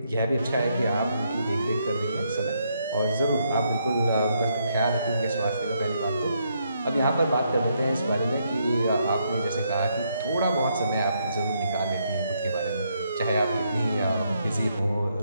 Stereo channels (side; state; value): both; inverted; correlation -0.76